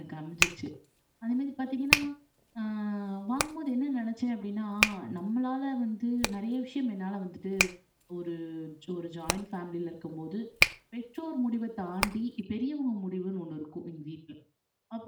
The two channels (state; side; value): identical; both; correlation 1.00